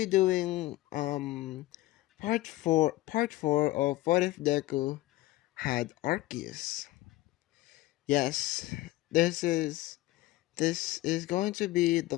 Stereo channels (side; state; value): right; quieter; 17.8 dB